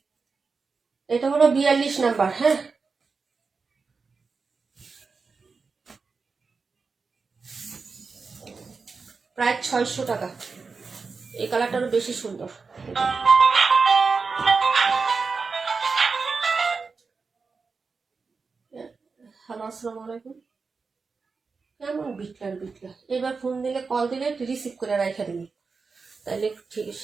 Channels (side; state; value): left; quieter; 4.7 dB